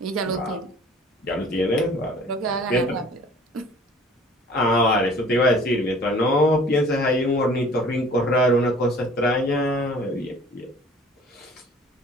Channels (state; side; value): normal; both; correlation 0.50